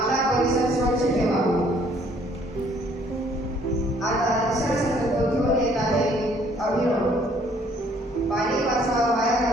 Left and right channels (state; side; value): normal; both; correlation 0.61